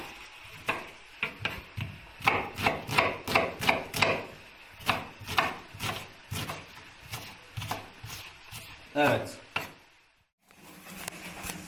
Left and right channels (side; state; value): both; identical; correlation 1.00